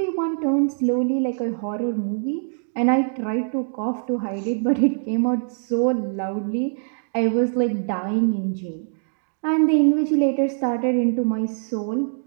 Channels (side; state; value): left; silent; digital silence